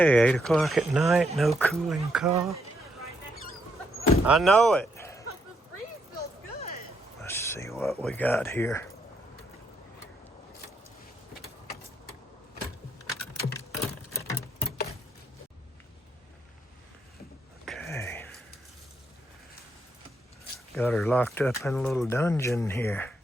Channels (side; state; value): both; normal; correlation 0.76